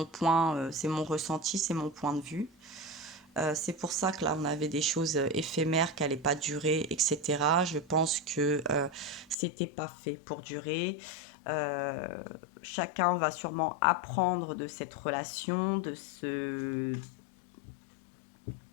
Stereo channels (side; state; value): right; drops out; at 9.3 s